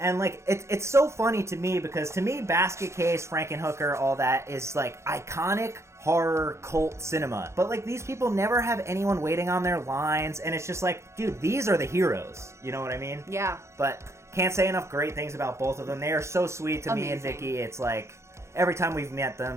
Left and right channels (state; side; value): late; left; 0.14 ms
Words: like, it's so funny to me, because to me, Basket Case, Frankenhooker, all that is, like, iconic horror cult cinema. But, like, these people never have anyone waiting on their lines, and it's just like, dude, these are the heroes. You know what I mean? Yeah. But can't say enough great things about both of them. They are so sweet to me and Vicky. It's like, every time we've met